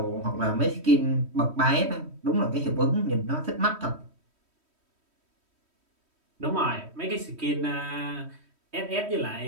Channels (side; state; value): left; late; 3.1 ms